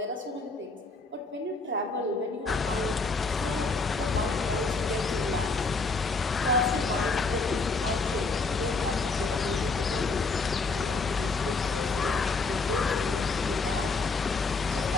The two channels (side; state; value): right; quieter; 3.9 dB